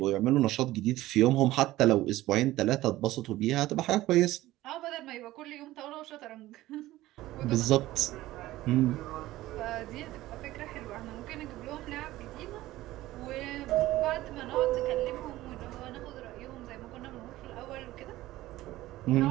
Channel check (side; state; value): left; quieter; 16.5 dB